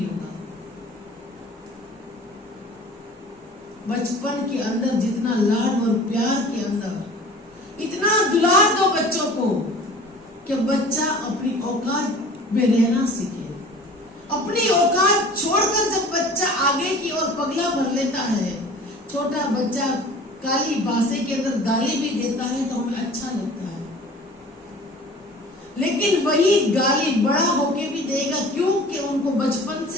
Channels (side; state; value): both; normal; correlation 0.44